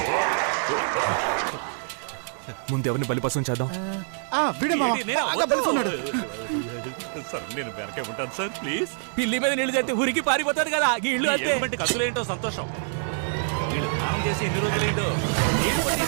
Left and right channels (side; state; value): left; silent; digital silence